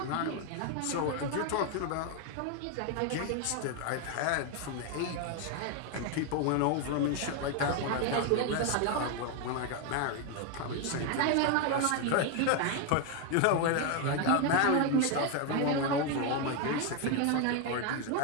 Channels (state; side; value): different; both; correlation 0.01